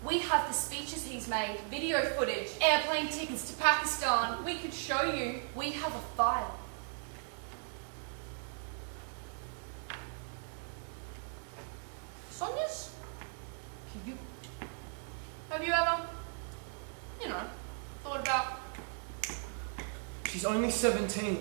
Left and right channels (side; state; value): left; silent; 53 dB below the other